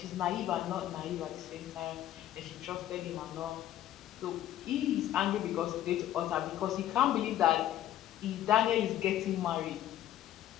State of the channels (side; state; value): right; quieter; 12.4 dB